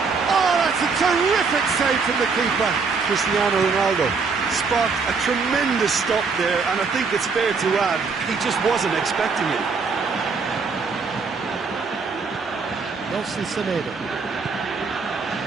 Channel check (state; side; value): quieter; left; 4.9 dB